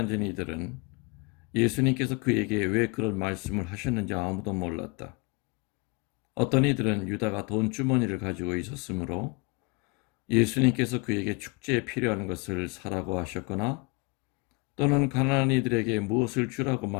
이들은 예수님께서 그에게 왜 그런 말씀을 하셨는지 아무도 몰랐다. 어떤 이들은 유다가 돈 주머니를 가지고 있었으므로 예수님께서 그에게 축제에 필요한 것을 사라고 하셨거나 또는 가난한 이들에게 무엇을 주라고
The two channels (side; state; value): right; quieter; 28.7 dB